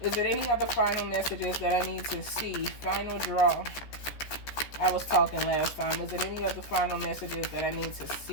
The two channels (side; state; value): right; late; 14 ms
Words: Is there any other final messages that I need to see? Final draw. I was talking last time. Is there any other final messages that I need to